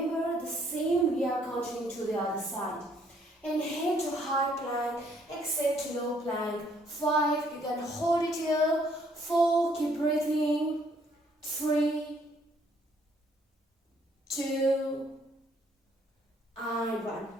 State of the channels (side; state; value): both; normal; correlation 0.65